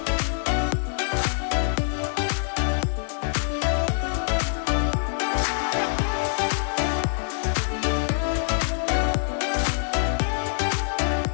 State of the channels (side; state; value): right; silent; 62 dB below the other